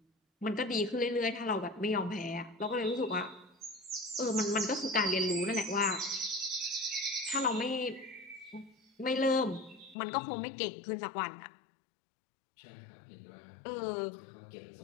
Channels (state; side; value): drops out; right; at 10.0 s